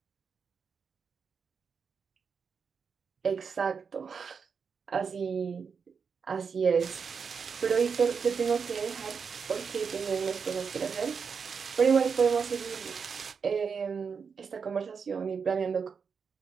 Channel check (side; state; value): left; quieter; 5.9 dB